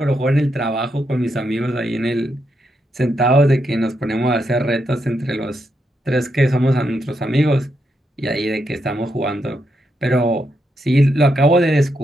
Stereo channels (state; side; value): normal; both; correlation 0.81